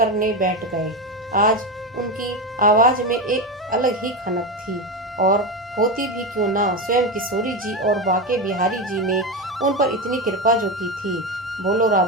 बैठ गए। आज उनकी आवाज में एक अलग ही खनक थी, और होती भी क्यों ना, स्वयं किशोरी जी और बाके बिहारी जी ने उन पर इतनी कृपा जो की थी। बोलो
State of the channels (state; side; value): normal; both; correlation 0.16